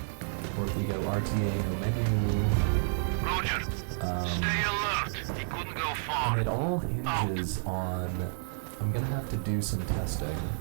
or if we go RTA no menu. Roger. Stay alert. He couldn't go far. And it all hinges on, I'm gonna have to do some testing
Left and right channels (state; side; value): silent; left; digital silence